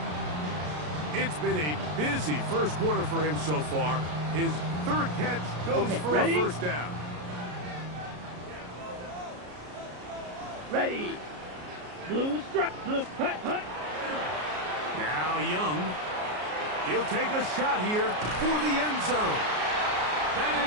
It's been a busy first quarter for him so far. His third catch goes for a first down. Ready. Blue strike. Blue hut. Now Young. He'll take a shot here for the end zone. That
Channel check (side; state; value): left; late; 33 ms